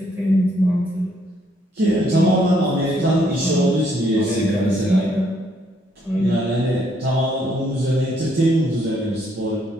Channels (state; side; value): normal; both; correlation 0.70